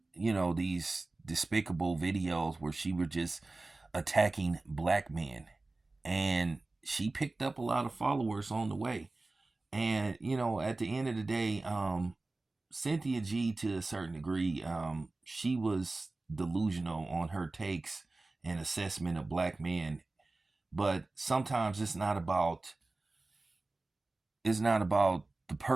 these despicable videos where she were just attacking black men, and she picked up a lot of followers on the way. And at the end of the day, Cynthia G, to a certain degree, she was delusional on her takes and assessment of black men. But sometimes it's not about the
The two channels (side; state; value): left; quieter; 3.2 dB